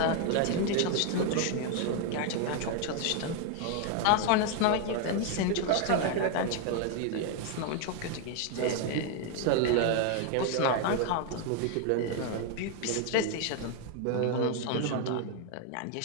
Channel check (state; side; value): different; both; correlation 0.01